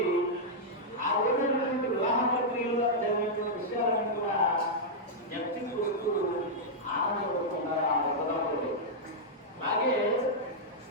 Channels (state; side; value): normal; both; correlation -0.06